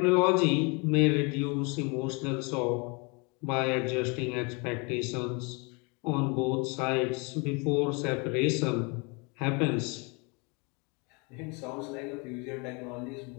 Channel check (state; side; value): quieter; right; 30.9 dB